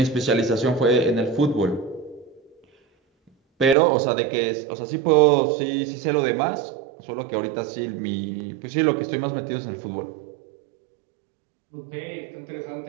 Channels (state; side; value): drops out; left; at 3.8 s